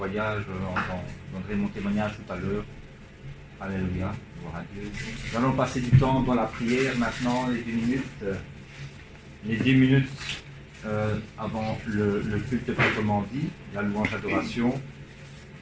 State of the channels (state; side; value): identical; both; correlation 1.00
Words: Je donnerai mon témoignage tout à l'heure. Alléluia. Gloire à Dieu. Nous allons passer du temps dans la prière maintenant, les 10 minutes. Les 10 minutes avant le culte proprement dit, la louange d'adoration.